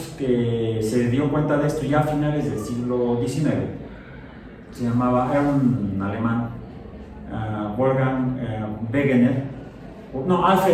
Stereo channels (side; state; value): both; identical; correlation 1.00